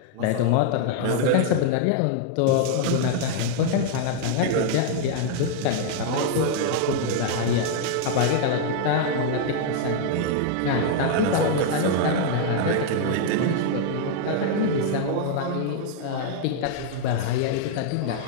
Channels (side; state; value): both; different; correlation 0.00